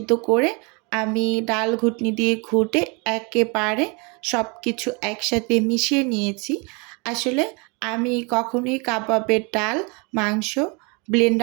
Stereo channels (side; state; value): left; quieter; 31.2 dB